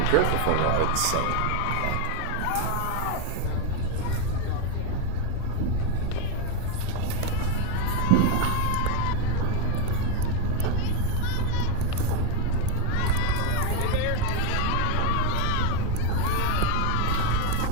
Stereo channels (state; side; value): different; both; correlation 0.02